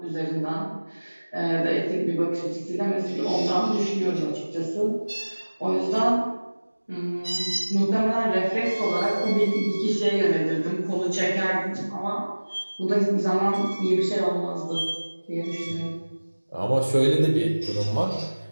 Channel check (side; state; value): both; inverted; correlation -1.00